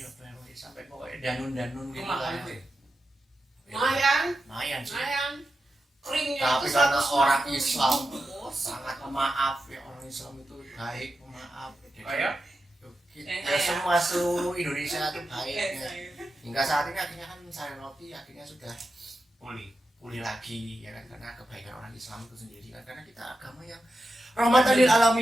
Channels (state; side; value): normal; both; correlation 0.90